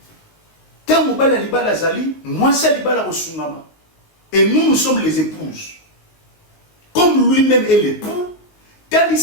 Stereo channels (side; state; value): right; late; 19 ms